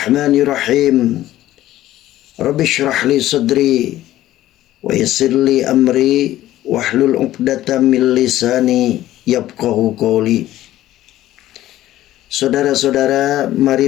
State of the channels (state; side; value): quieter; right; 14.3 dB